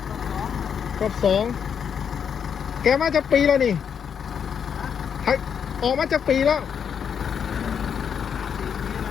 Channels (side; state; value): right; quieter; 7.5 dB